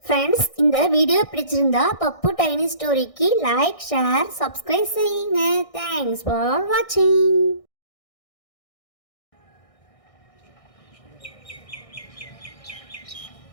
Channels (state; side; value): late; right; 1.6 ms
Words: ஃப்ரெண்ட்ஸ், இந்த வீடியோ பிடிச்சிருந்தா பப்பு டைனி ஸ்டோரிக்கு லைக், ஷேர், சப்ஸ்கிரைப் செய்யுங்க. தேங்க்ஸ் ஃபார் வாட்சிங்.